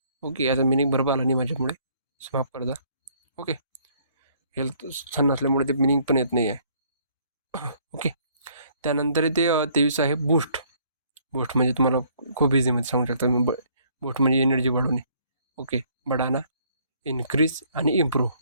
ओके, याचा मिनिंग बरोबर आला नाही माझ्यामुळे, माफ करता. ओके. हेल्थ छान नसल्यामुळे ते मिनिंग पण येत नाही आहे. ओके. त्यानंतर ते 23 आहे बूस्ट. बूस्ट म्हणजे तुम्हाला खूप इझीमध्ये सांगू शकता मी. बूस्ट म्हणजे एनर्जी वाढवणे. ओके. बढाना, इन्क्रीज आणि इम्प्रूव्ह.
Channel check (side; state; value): both; inverted; correlation -0.63